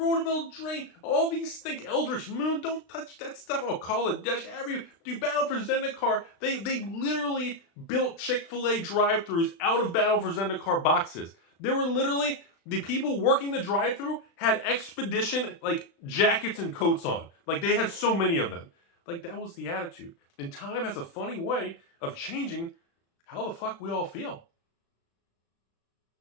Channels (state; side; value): late; right; 36 ms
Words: of Eldraine, all these things, Eldritch Moon, don't touch that stuff, Call it Dash, do Battle for Zendikar, they literally built Chick-fil-A drive-thrus out of Battle for Zendikar boxes. There were literally, the people working the drive-thru had Expedition, jackets and coats on. They had so many of them. That was the attitude. And time has a funny way of changing how the fuck we all feel.